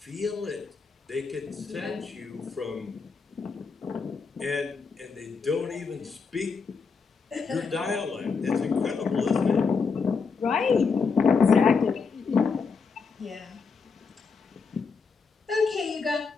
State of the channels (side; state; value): right; quieter; 5.1 dB